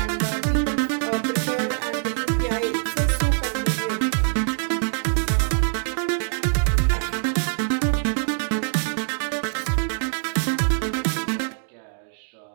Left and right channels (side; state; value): left; silent; digital silence